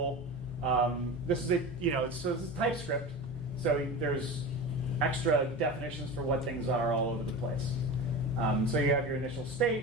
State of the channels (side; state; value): both; normal; correlation 0.29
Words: This is TypeScript, so there's extra definitions for what things are all over the place. So you have your initial